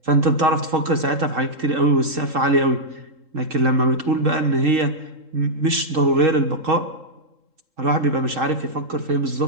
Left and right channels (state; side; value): late; left; 3.7 ms